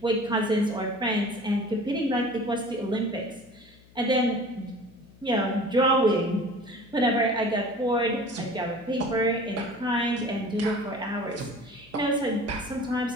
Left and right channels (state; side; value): noise; left; hum, 26 dB below the sound